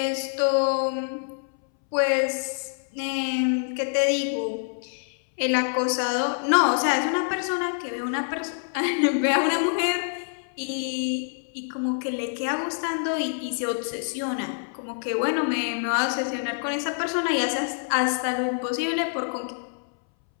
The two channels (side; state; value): right; silent; 61 dB below the other